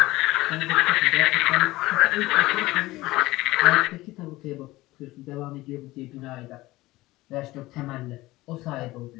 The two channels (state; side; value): quieter; right; 18.8 dB